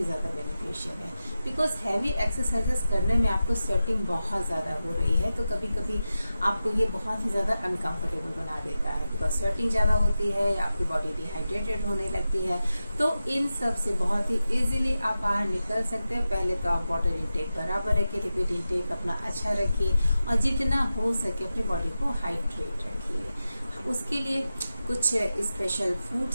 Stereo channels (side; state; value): both; inverted; correlation -0.92